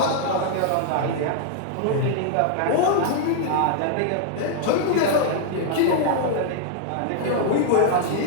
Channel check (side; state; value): both; different; correlation 0.00